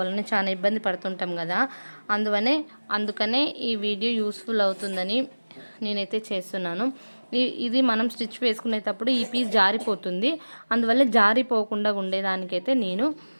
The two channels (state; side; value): inverted; both; correlation -1.00